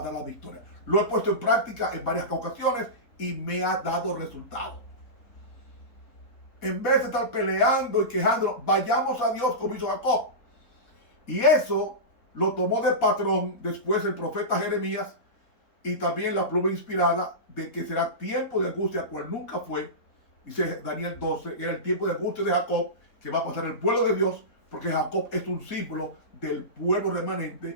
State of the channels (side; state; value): right; late; 4.1 ms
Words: dar la victoria. Lo he puesto en práctica en varias ocasiones y me ha dado resultado. En vez de estar peleando y quejándonos, vayamos a Dios como hizo Jacob. Y eso lo tomó de patrón después el profeta Jeremías, y también la pluma inspirada de que será tiempo de angustia, cual nunca fue. Dice Daniel 12, era el tiempo de angustia de Jacob, que va a pasar el pueblo de Dios, porque Jacob es un símbolo del pueblo